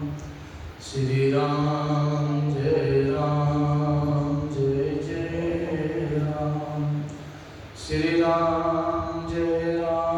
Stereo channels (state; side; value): identical; both; correlation 1.00